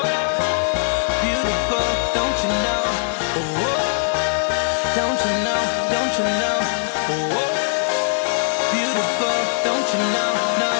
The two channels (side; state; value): right; silent; digital silence